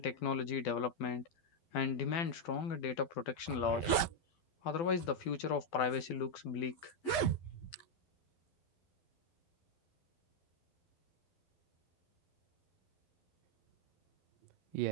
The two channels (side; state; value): right; late; 11 ms